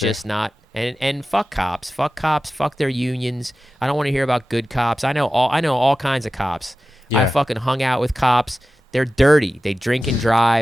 not. And fuck cops. Fuck cops. Fuck their unions. I don't want to hear about good cops. I know all kinds of cops. Yeah. I fucking hung out with cops. They're dirty. They drink and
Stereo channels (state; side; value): normal; both; correlation 0.94